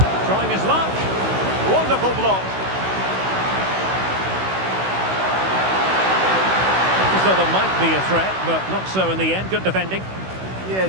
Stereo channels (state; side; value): late; left; 16 ms